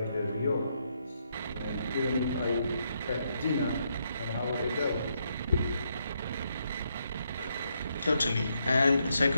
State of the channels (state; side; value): inverted; both; correlation -0.78